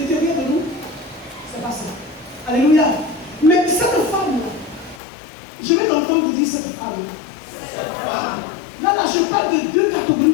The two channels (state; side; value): drops out; right; at 5.0 s